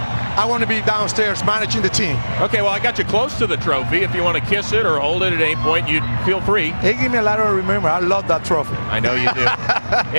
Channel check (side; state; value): both; inverted; correlation -1.00